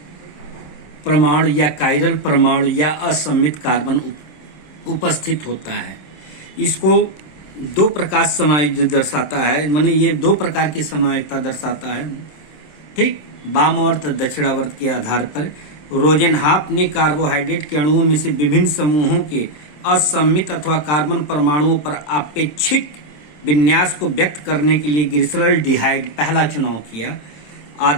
परमाणु या कायरल परमाणु या असम्मित कार्बन उपस्थित होता है। इसको दो प्रकार समायोजित दर्शाता है, माने ये दो प्रकार की समायोजितता दर्शाता है। ठीक, वामावर्त दक्षिणावर्त के आधार पर रोजेनहाफ ने कार्बोहाइड्रेट के अणुओं में से विभिन्न समूहों के असम्मित अथवा कार्बन परमाणुओं पर आपेक्षिक विन्यास को व्यक्त करने के लिए ग्लिसरॉल्डिहाइड पहला चुनाव किया।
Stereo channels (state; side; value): late; right; 26 ms